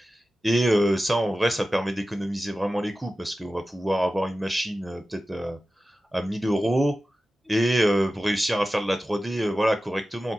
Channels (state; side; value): normal; both; correlation 0.95